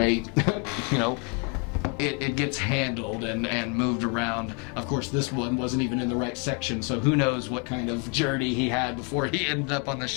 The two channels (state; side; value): quieter; right; 34.9 dB